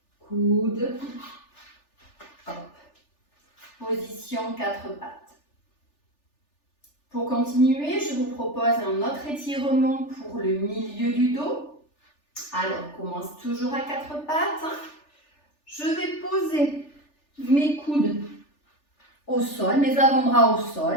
coude, hop. Position quatre pattes. Pour continuer, je vous propose un autre étirement pour le milieu du dos. Alors, on commence toujours à quatre pattes. Je vais poser mes coudes au sol, mes avant-bras au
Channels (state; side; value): late; right; 3.4 ms